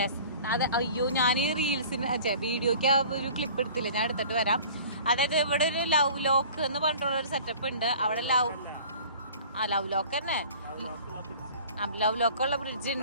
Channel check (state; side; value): inverted; both; correlation -0.45